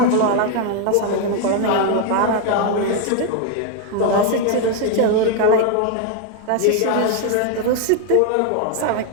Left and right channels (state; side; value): different; both; correlation 0.01